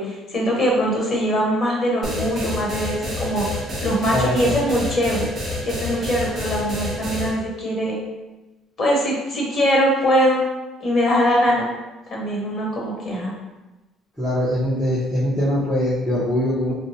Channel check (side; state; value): both; normal; correlation 0.64